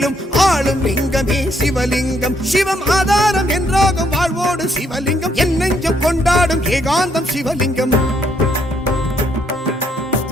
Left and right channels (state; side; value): normal; both; correlation 0.71